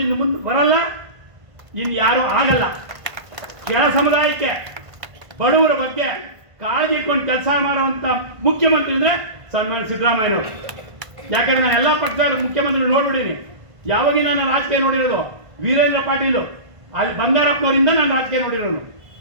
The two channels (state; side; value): late; left; 1.5 ms